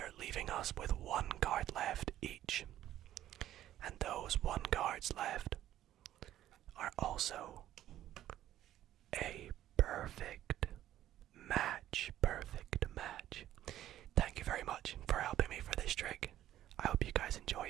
leaving us with 1 card left each. And those 1 cards left are also a perfect match. Perfect match. Thank you very much for helping me for this trick. I hope you guys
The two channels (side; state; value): left; quieter; 12.8 dB